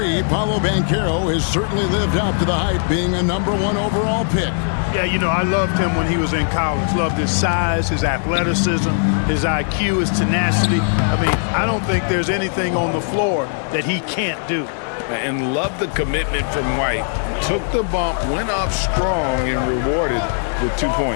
Paolo Banchero has certainly lived up to the hype, being a #1 overall pick. Yeah, you know, I loved him when he was in college. Loved his size, his athleticism, his IQ, his tenacity. I mean, I don't think there's anything on the floor that he can't do. And love the commitment from White. Took the bump, went up strong, and rewarded with 2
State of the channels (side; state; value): right; silent; digital silence